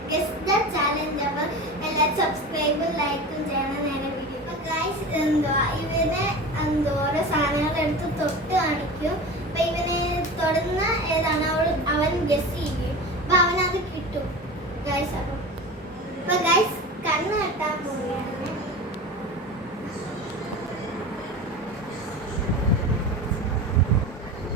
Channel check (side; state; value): both; normal; correlation 0.31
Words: Guess the challenge. അപ്പോൾ എല്ലാവരും സബ്സ്ക്രൈബും ലൈക്കും ചെയ്യണം നേരെ വീഡിയോ. അപ്പോൾ ഗൈസ് ഇവനെ ഓരോ സാധനങ്ങൾ എടുത്ത് തൊട്ട് കാണിക്കും. അപ്പോൾ ഇവനെ തൊടുന്ന ഏതാണ് അവൻ ഗെസ് ചെയ്യും. അപ്പോൾ അവനത് കിട്ടും ഗൈസ്. അപ്പോൾ ഗൈസ് കണ്ണ് കെട്ടാൻ പോവുകയാണ്.